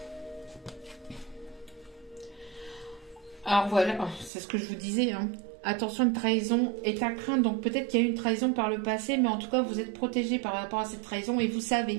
Alors voilà, c'est ce que je vous disais, hein. Attention, une trahison est à craindre. Donc peut-être qu'il y a eu une trahison par le passé, mais en tout cas, vous êtes protégé par rapport à cette trahison. Et vous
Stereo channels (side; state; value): left; drops out; at 4.3 s